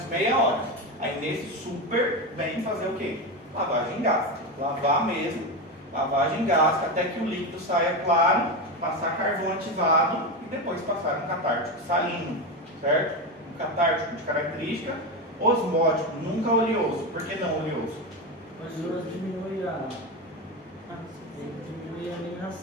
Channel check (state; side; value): normal; both; correlation 0.16